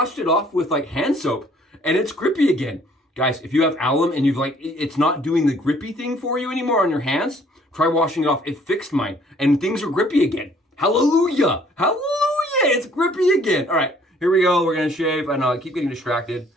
it off with like hand soap and it's grippy again. Guys, if you have alum and it's not doing the grippy thing for you anymore on your hands, try washing it off. It fixed mine and things are grippy again. Hallelujah. Hallelujah. It's grippy again. All right, here we go. We're going to shave. I know I keep getting distracted.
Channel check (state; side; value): normal; both; correlation 0.60